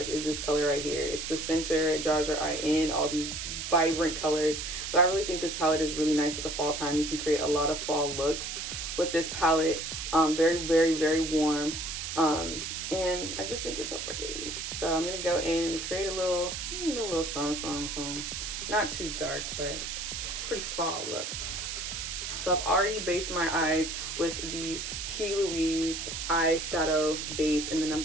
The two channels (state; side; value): noise; right; hiss, 5 dB below the sound